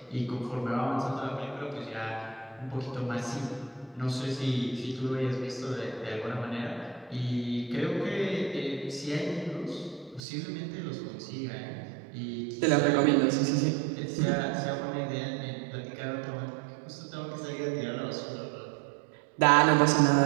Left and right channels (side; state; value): left; drops out; at 10.2 s